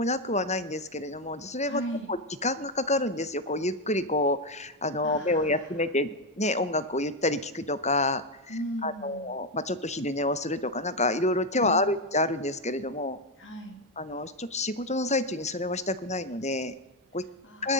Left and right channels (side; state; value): both; normal; correlation 0.07